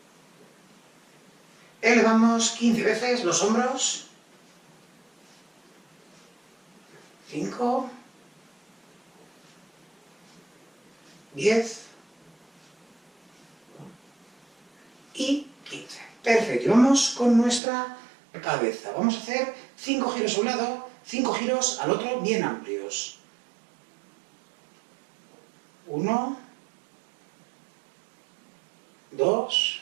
Elevamos 15 veces los hombros. 5, 10 y 15. Perfecto. Y vamos con nuestra cabeza. Vamos a hacer 5 giros a un lado, 5 giros al otro, bien amplios. 1, 2,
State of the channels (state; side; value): drops out; left; at 17.6 s